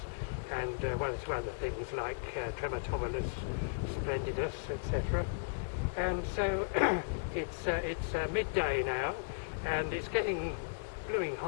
and one or two other things like Trematobulus splendidus, etc. And so it's midday now, and it's getting blooming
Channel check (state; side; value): quieter; right; 39.3 dB